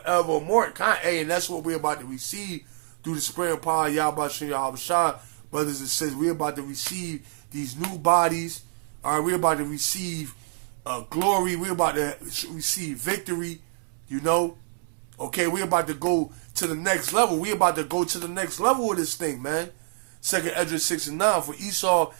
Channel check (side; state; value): left; silent; 61 dB below the other